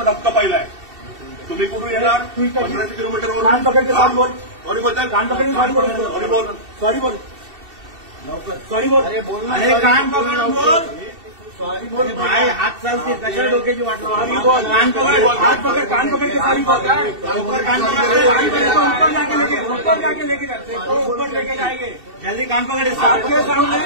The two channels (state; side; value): late; left; 2.7 ms